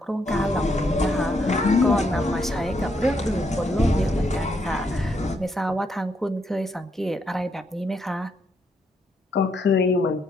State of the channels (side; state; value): both; normal; correlation 0.76